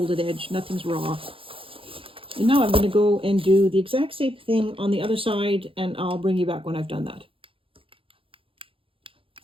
edge. Nothing's raw. And now I'm going to go and do the exact same thing on the other side, and I'll bring you back when I've done that.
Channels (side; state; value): left; late; 0.26 ms